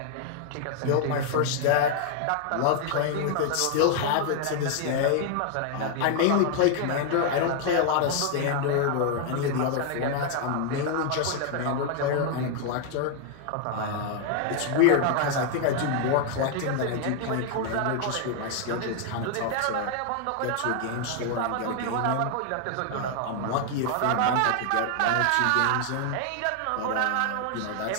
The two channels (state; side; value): different; both; correlation 0.00